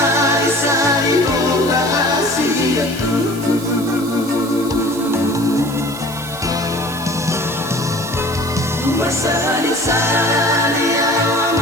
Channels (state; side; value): noise; right; hiss, 15 dB below the sound